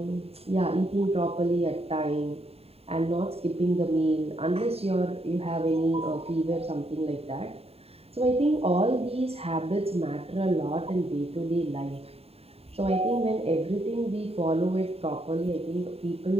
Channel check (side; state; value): left; late; 0.29 ms